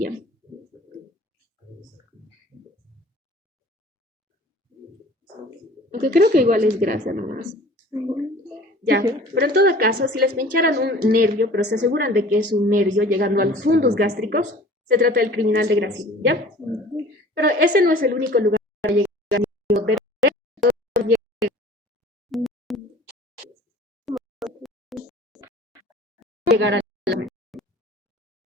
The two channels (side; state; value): both; normal; correlation 0.46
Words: Aunque creo que igual es grasa nomás. Ya, pero en todo caso, si les pincharan un nervio, pero se aseguran de que es un nervio llegando a los fundus gástricos, se trata del criminal de Gracie, ¿ya? Pero ese no es el único lugar para llegar al nervio. Llegar a la